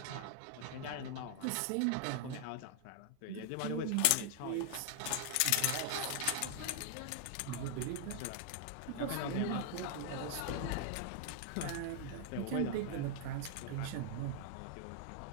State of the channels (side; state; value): both; different; correlation 0.00